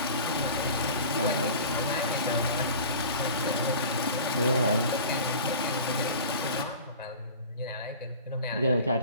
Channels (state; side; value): inverted; both; correlation -0.40